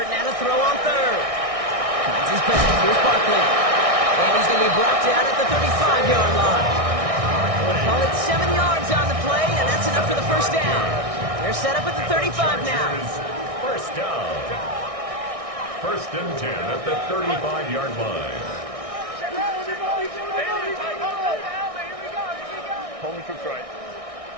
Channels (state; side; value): late; left; 1.6 ms